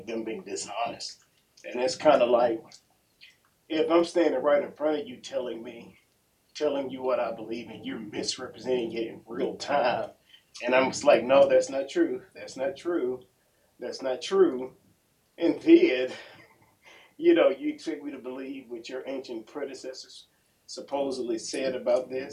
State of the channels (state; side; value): identical; both; correlation 1.00